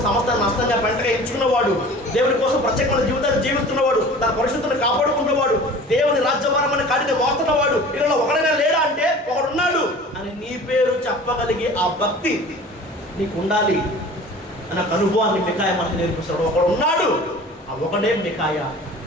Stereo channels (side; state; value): both; normal; correlation 0.42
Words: సమస్తాన్ని నష్టంగా పెంటగా ఎంచుకున్నవాడు, దేవుని కోసం ప్రత్యేకమైన జీవితాన్ని జీవిస్తున్నవాడు, తన పరిశుద్ధతను కాపాడుకున్నవాడు, దేవుని రాజ్యభారమని కాడిని మోస్తున్నవాడు, ఇలా ఒకడైనా లేడా అంటే ఒకడున్నాడు అని నీ పేరు చెప్పగలిగే ఆ భక్తి నీకు ఉండాలి అన్న అనుభవాన్ని మికాయా మనకు నేర్పిస్తాడు. ఒకడు ఉన్నాడు, ఆ ఒకడే మికాయా.